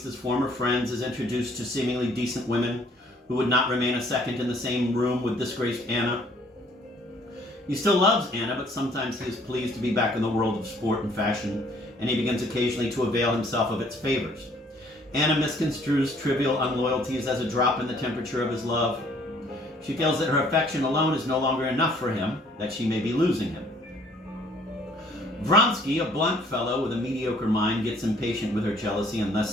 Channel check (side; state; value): both; normal; correlation 0.60